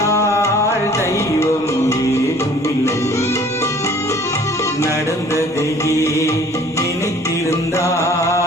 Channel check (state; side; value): normal; both; correlation 0.52